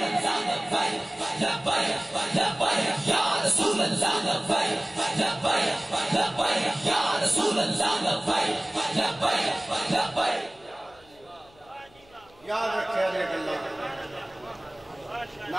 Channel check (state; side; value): noise; left; hum, 28 dB below the sound